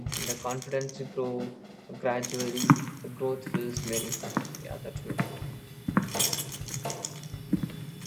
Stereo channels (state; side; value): identical; both; correlation 1.00